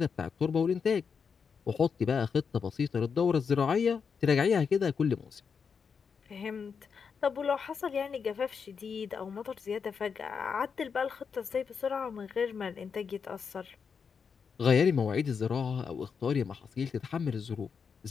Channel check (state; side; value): quieter; right; 6.1 dB